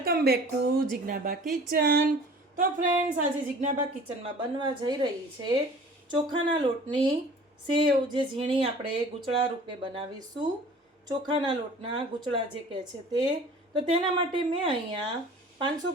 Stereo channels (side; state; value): both; normal; correlation 0.46